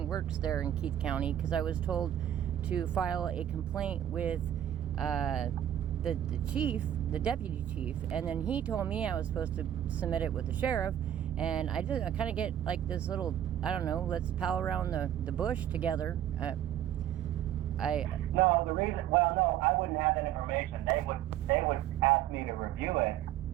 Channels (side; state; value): left; quieter; 11.2 dB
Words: works there in Keith County, because I was told to file a complaint with the chief, the deputy chief, and then he told me I was supposed to submit it with the sheriff, and I kind of get like this little, I don't know, let's pal around the bush together. No, I wouldn't have that information. They would ask me to review it,